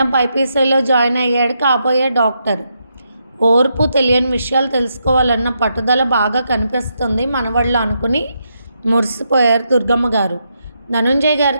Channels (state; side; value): inverted; both; correlation -0.81